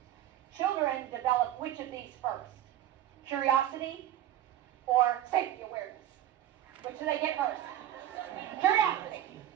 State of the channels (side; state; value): left; quieter; 12.2 dB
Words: Children develop which of these first? Curiosity or safety awareness? Which do they get first? Curiosity.